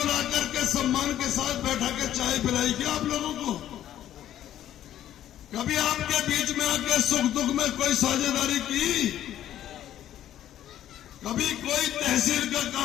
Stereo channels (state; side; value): quieter; right; 11.8 dB